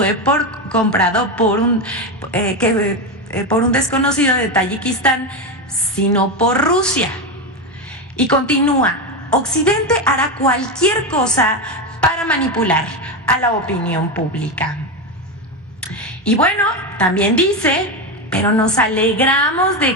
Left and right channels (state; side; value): normal; both; correlation 0.13